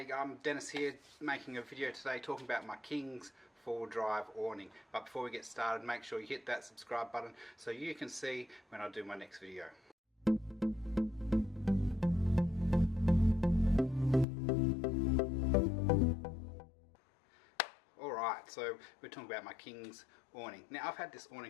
going? I'm Dennis here, making a video today talking about my King's 4-drive awning. But before we get started, make sure you hit that subscribe button so you can see when I do my next video. Alright, so we're talking about my King's awning. Now I've had this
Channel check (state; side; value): drops out; right; at 14.2 s